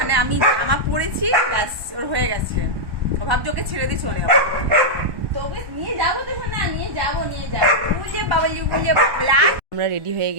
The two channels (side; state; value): left; late; 1.1 ms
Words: আমি জামা পরেছি, ব্যাস ওর হয়ে গেছে। ও ভাবছে ওকে ছেড়ে দিয়ে চলে যাবো, তোকে নিয়ে যাবো তো না, নিয়ে যাবো বুঝে বাবালি বুঝে। আমরা রেডি হয়ে